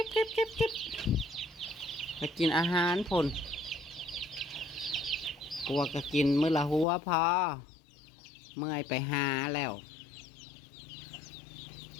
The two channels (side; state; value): right; drops out; at 6.9 s